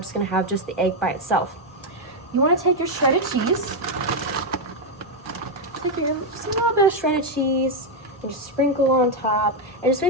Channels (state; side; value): normal; both; correlation 0.02